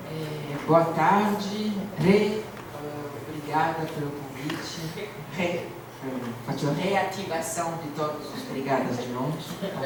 Boa tarde, obrigada pelo convite. Faccio reativação de todos os brigadas de novo.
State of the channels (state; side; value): identical; both; correlation 1.00